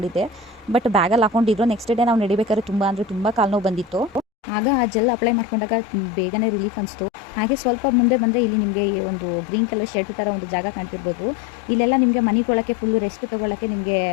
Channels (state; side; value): drops out; right; at 4.2 s